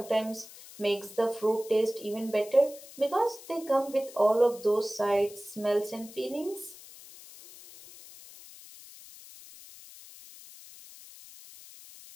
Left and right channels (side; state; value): left; noise; hiss, 18 dB below the sound